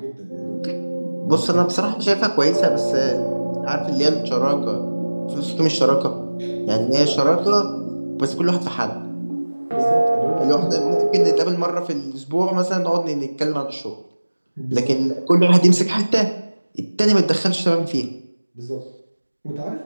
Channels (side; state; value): both; inverted; correlation -1.00